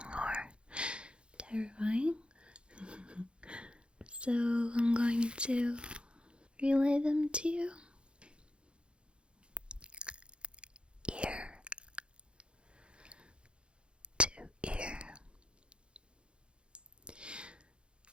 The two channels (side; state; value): left; late; 0.056 ms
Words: or terrifying. So I'm going to relay them to you. Ear to ear.